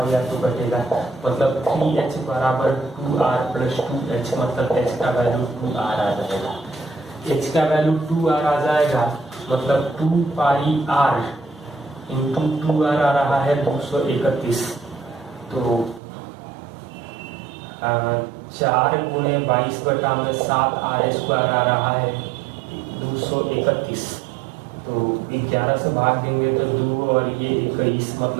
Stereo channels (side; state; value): left; drops out; at 16.0 s